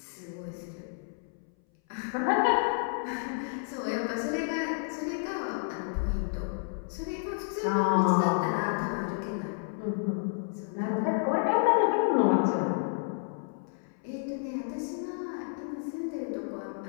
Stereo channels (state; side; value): silent; right; 57 dB below the other